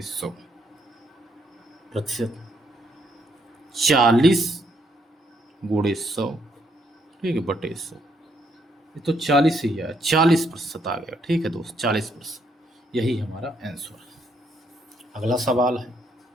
100 प्रतिशत 40 गुणे 100। ठीक है, बटे 100, ये तो 40 ही है, 40% आ गया। ठीक है दोस्त, 40%, यही हमारा आंसर है। अगला सवाल है,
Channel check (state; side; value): normal; both; correlation 0.73